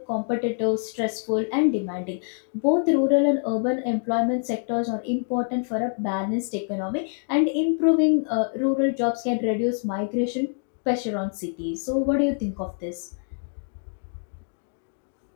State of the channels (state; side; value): silent; right; digital silence